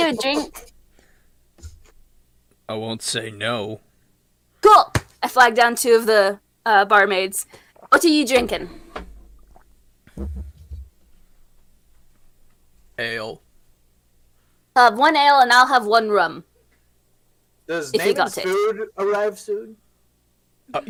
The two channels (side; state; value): both; identical; correlation 1.00